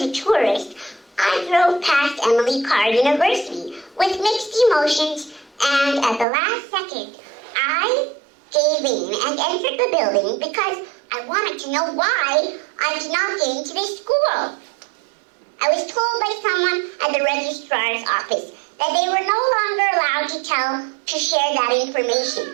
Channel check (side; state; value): left; drops out; at 6.2 s